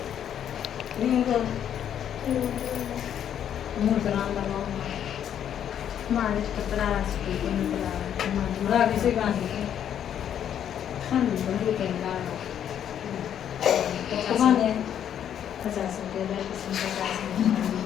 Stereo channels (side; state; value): right; quieter; 9.6 dB